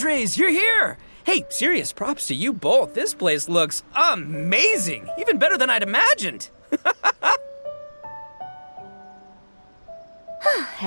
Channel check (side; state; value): both; inverted; correlation -1.00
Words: you're here! Hey, serious props to you both. This place looks amazing! Even better than I'd imagined!